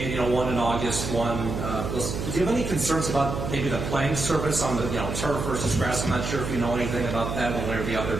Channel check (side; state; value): right; noise; hum, 4 dB below the sound